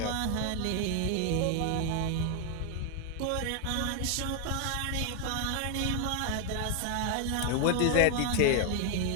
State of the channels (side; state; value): both; different; correlation 0.00